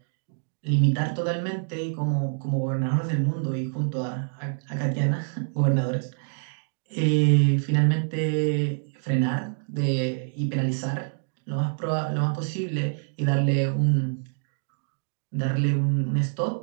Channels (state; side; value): silent; left; digital silence